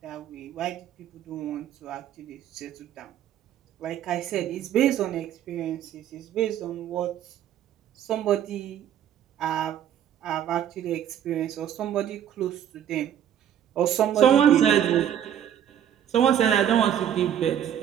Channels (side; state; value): left; quieter; 10.1 dB